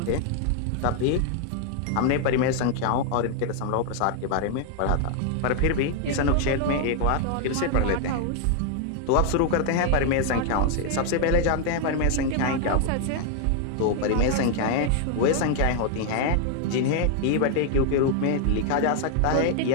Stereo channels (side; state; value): both; different; correlation 0.00